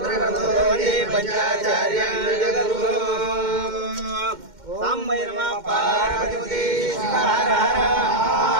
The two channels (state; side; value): late; left; 2.1 ms